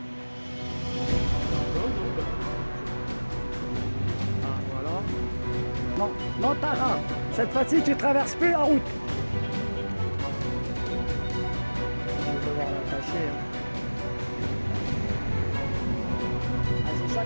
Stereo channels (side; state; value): both; inverted; correlation -1.00